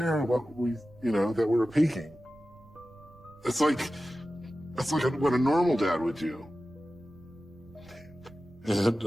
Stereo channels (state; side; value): noise; right; rumble, 25 dB below the sound